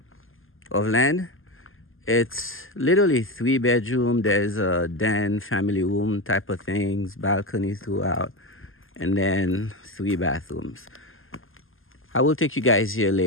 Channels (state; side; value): late; right; 0.59 ms